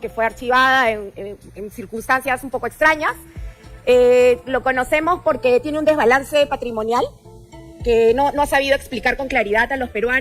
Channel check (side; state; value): both; identical; correlation 1.00